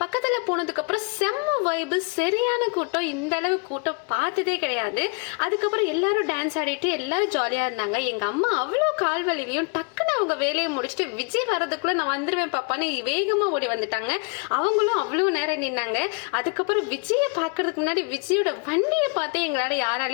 பக்கத்துல போனதுக்கு அப்புறம் செம்ம வைபு, சரியான கூட்டம். இந்த அளவு கூட்டம் பார்த்ததே கிடையாது. அதுக்கப்புறம் எல்லாரும் டான்ஸ் ஆடிட்டு எல்லாரும் ஜாலியா இருந்தாங்க. எங்க அம்மா அவ்வளோ கால்வலிலையும் டக்குன்னு அவங்க வேலையை முடிச்சுட்டு விஜய் வர்றதுக்குள்ள நான் வந்துருவேன் பாப்பான்னு வேகமா ஓடி வந்துட்டாங்க. அவங்களும் அவ்வளோ நேரம் நின்னாங்க. அதுக்கப்புறம் விஜயை பார்க்கறதுக்கு முன்னாடி விஜயோட வண்டியை பார்த்து எங்களால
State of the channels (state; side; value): quieter; right; 34.8 dB